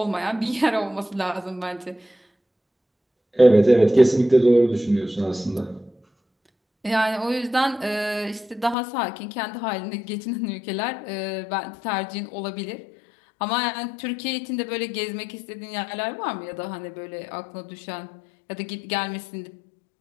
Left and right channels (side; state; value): right; drops out; at 8.8 s